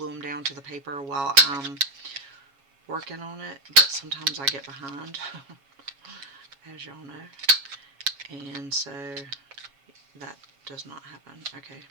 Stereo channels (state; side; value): late; left; 7.2 ms